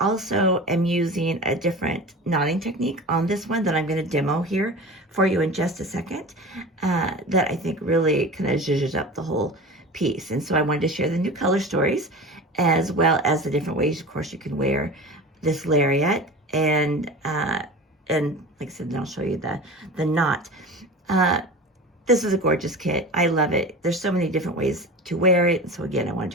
also am using a different knotting technique on this one that I'm going to demo here for you in just a second, that I think really kind of zhuzhes up the whole piece. And so I wanted to share the new color stories as well as the different ways, of course, you can wear this lariat. And like I said, then I'll show you the knot. This is a gorgeous kit. I love it. There's so many different ways to wear it. And so again, I wanted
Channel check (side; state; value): both; normal; correlation 0.33